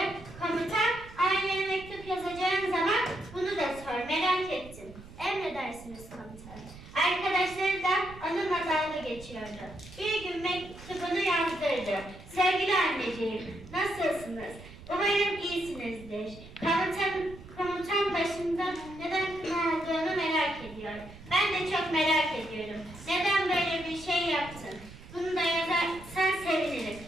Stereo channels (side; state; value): right; noise; rumble, 17 dB below the sound